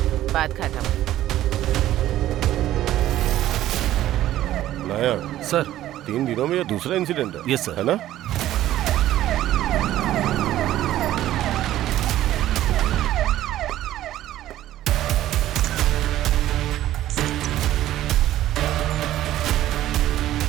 बात खत्म। नायक सर 3 दिनों में ये दूसरा इंसिडेंट है। Yes sir. है ना?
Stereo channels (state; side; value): quieter; left; 13.6 dB